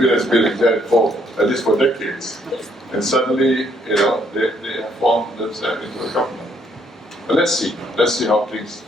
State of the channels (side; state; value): both; normal; correlation 0.69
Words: that's been exact for at least for decades. And suddenly, they have formed themselves into a government. But let's see how things,